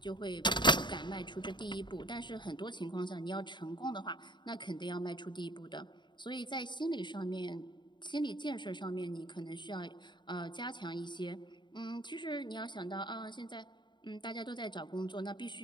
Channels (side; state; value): right; late; 0.22 ms